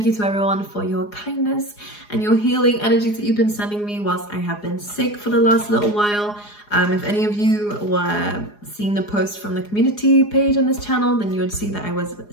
you to everyone for your kindness and your healing energies that you've been sending me whilst I have been sick for the last little while. If any of you were seeing the post from the community page on this channel, then you would see that I was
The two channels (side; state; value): right; late; 4.8 ms